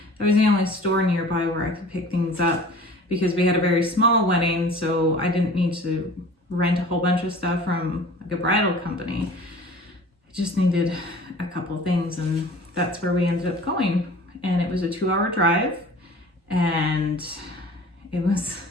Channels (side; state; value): both; normal; correlation 0.44